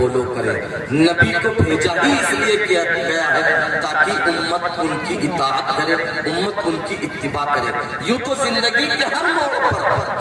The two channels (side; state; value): both; identical; correlation 1.00